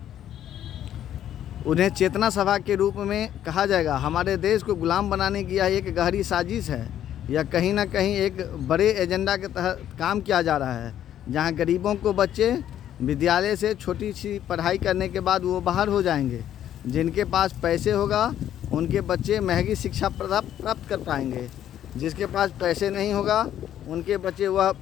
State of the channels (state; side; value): quieter; right; 11.0 dB